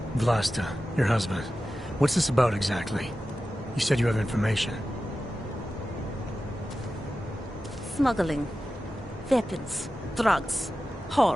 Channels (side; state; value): both; normal; correlation 0.93